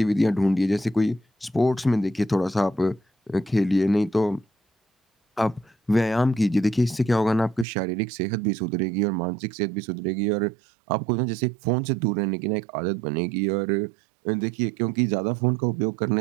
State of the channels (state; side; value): drops out; left; at 7.7 s